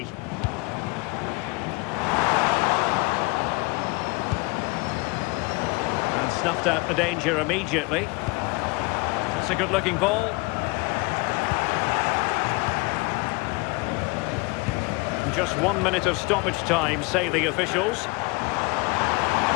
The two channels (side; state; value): right; quieter; 26.6 dB